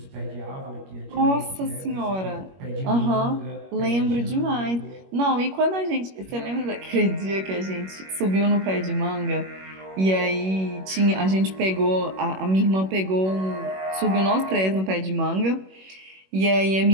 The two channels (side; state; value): left; late; 21 ms